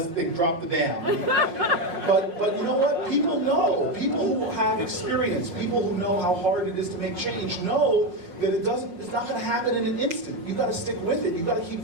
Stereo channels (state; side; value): late; left; 5.9 ms